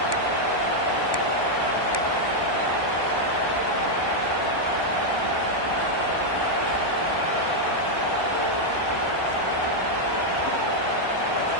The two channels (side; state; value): left; late; 1.1 ms